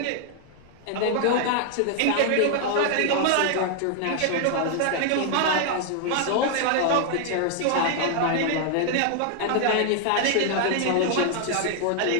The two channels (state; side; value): different; both; correlation 0.00